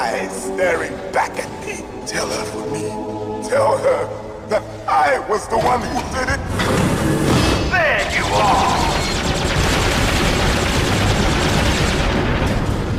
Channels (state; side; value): identical; both; correlation 1.00